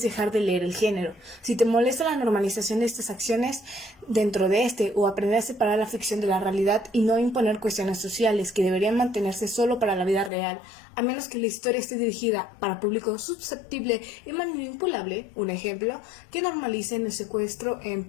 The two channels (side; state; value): right; drops out; at 10.3 s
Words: dejar de leer el género. Si te molesta la normalización de estas acciones dentro de este, o aprender a separar la ficción de la realidad y no imponer cuestiones sociales que deberían mantenerse solo para la vida real, a menos que la historia esté dirigida para público susceptible y manipulable, un ejemplo, que normalicen el secuestro en